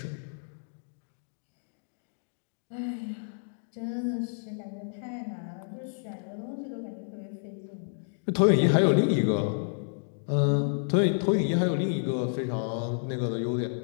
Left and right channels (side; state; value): right; silent; digital silence